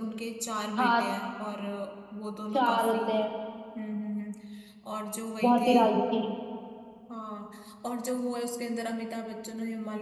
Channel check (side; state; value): both; identical; correlation 1.00